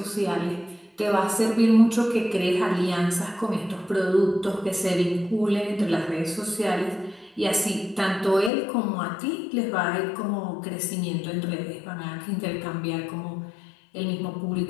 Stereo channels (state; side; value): drops out; right; at 8.5 s